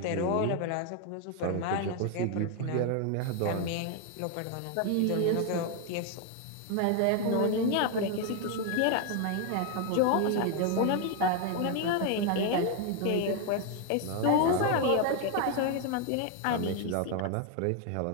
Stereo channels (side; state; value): both; different; correlation 0.01